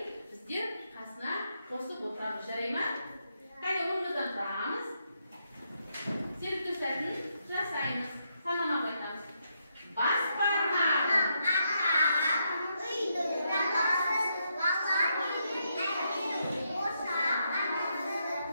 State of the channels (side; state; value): both; inverted; correlation -0.80